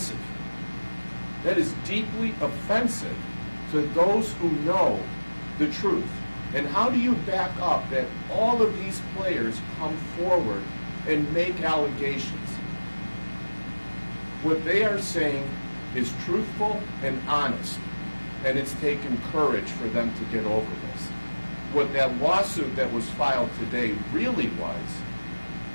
That is deeply offensive to those who know the truth. And how do you back up that all of these players come forward and make allegations? What they are saying is truthful and honest, and it's taken courage for them to get over this. What that lawsuit that was filed today really was,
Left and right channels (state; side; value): inverted; both; correlation -1.00